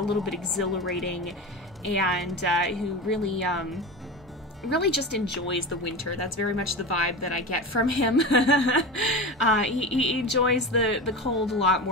little bit exhilarating, and who really really just enjoys the winter. That's very much the vibe that I get from him. He enjoys the cold a lot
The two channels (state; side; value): normal; both; correlation 0.26